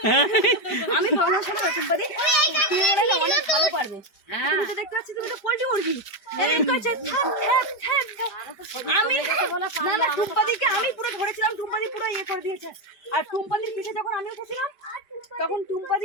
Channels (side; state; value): right; late; 5.0 ms